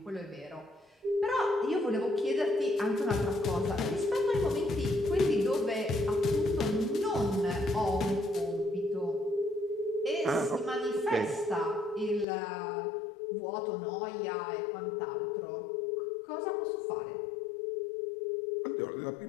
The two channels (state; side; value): drops out; right; at 12.2 s